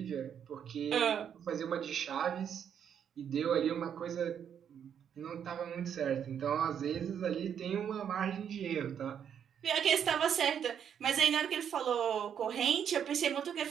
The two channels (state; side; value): quieter; left; 8.4 dB